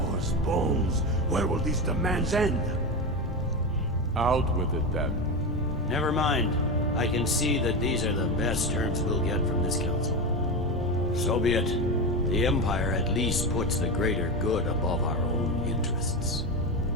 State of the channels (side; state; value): both; normal; correlation 0.18